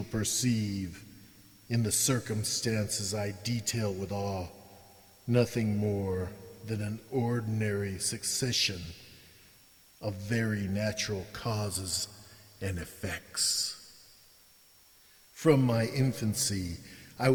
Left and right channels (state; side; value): identical; both; correlation 1.00